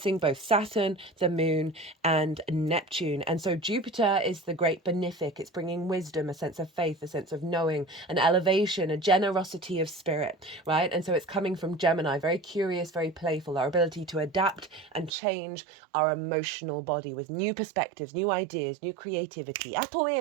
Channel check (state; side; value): drops out; left; at 15.1 s